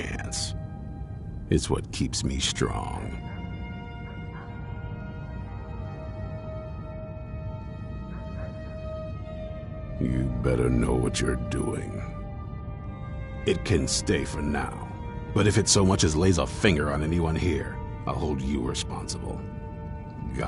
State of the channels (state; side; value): identical; both; correlation 1.00